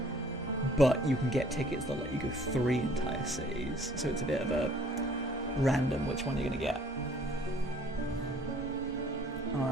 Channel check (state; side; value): normal; both; correlation 0.57